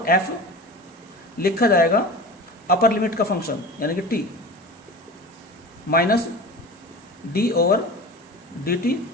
एफ लिखा जाएगा अपर लिमिट का फंक्शन यानी कि T minus D over d T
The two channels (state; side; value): normal; both; correlation 0.34